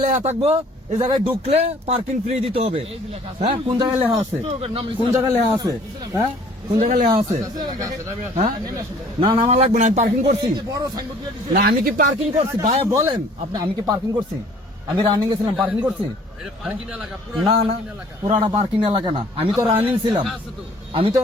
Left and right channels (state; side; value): normal; both; correlation 0.54